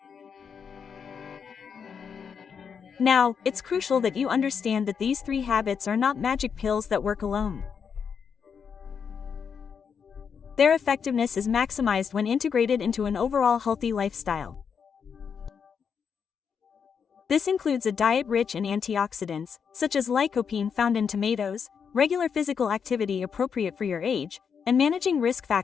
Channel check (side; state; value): right; quieter; 6.7 dB